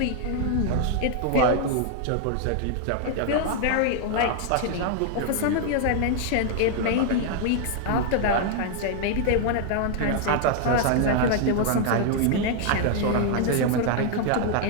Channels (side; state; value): both; different; correlation 0.00